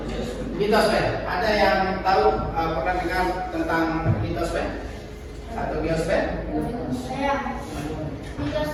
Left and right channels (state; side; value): identical; both; correlation 1.00